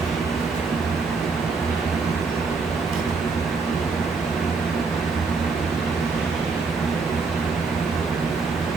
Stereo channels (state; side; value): quieter; left; 4.4 dB